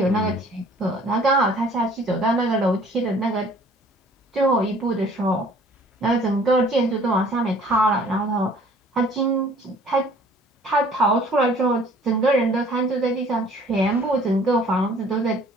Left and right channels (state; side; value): normal; both; correlation 0.54